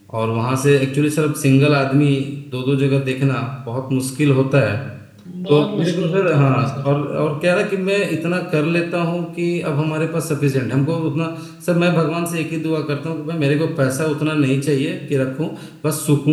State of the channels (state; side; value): identical; both; correlation 1.00